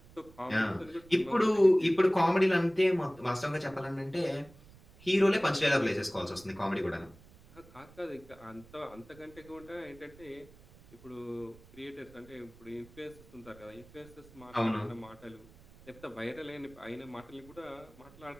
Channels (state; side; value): noise; right; rumble, 23 dB below the sound